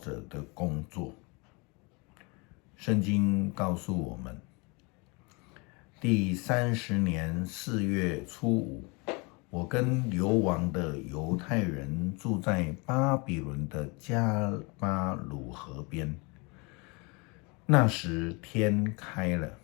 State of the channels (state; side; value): quieter; right; 29.3 dB